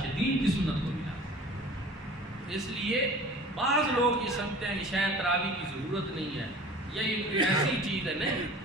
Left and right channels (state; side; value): normal; both; correlation 0.43